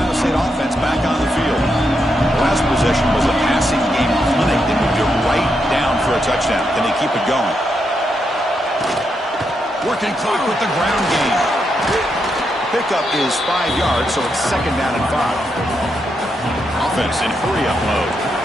State offense back on the field. The last possession was a passing game clinic. They moved it right down for a touchdown. Can they keep it going? Working clock with the ground game. Pickup is 5 yards, so it's 2nd down and 5. Offense in hurry-up mode.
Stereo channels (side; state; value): both; normal; correlation 0.82